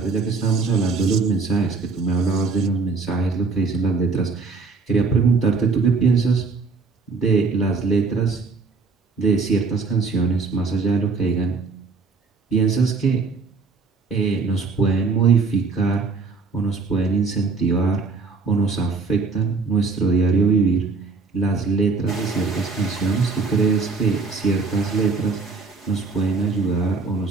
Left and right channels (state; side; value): quieter; left; 4.3 dB